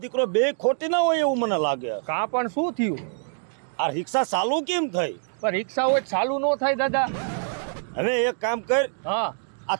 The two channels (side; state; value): left; silent; 57 dB below the other